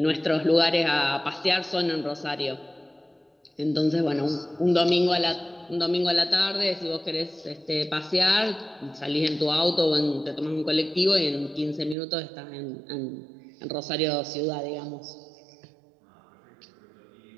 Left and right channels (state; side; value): drops out; left; at 12.0 s